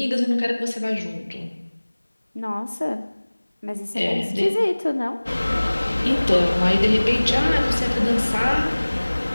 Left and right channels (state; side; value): inverted; both; correlation -1.00